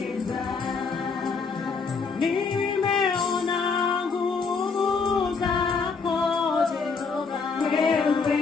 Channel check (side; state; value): right; quieter; 5.0 dB